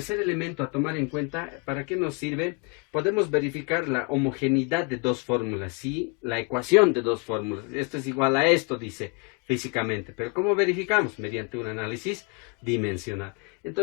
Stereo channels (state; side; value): quieter; right; 30.9 dB